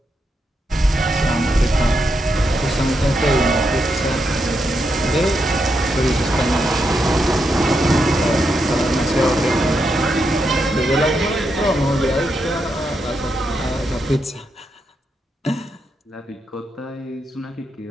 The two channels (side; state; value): both; normal; correlation 0.83